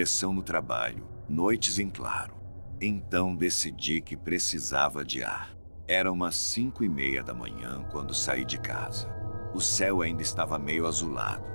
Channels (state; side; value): inverted; both; correlation -1.00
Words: no trabalho, noites em claro. Então decidi que precisava de ar. Era umas 5:30 da manhã quando saí de casa. O céu ainda estava meio azulado,